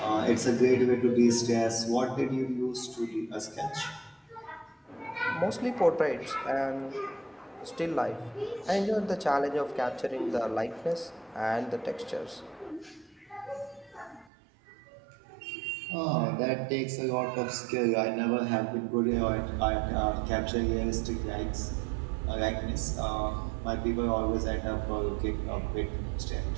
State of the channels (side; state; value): left; drops out; at 14.3 s